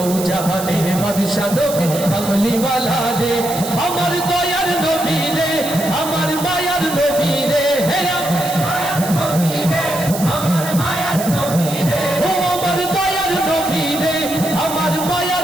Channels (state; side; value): noise; right; hiss, 9 dB below the sound